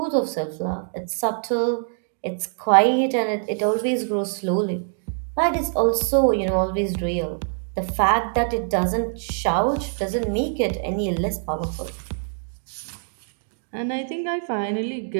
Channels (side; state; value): left; silent; digital silence